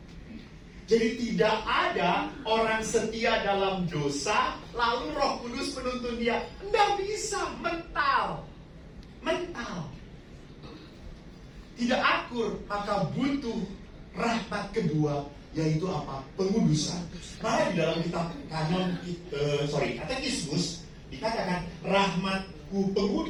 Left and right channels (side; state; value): both; identical; correlation 1.00